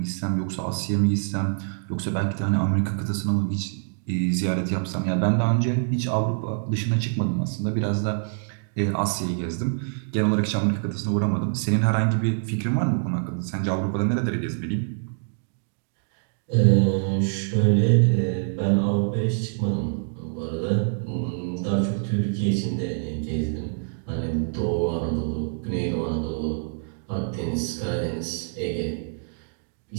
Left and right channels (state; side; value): silent; left; digital silence